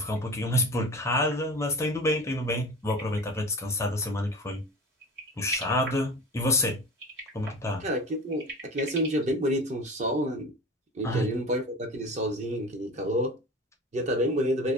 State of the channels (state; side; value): normal; both; correlation 0.35